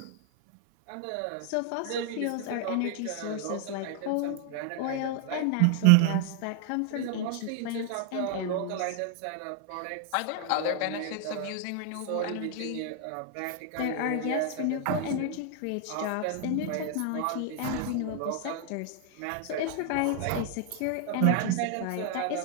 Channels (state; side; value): different; both; correlation 0.00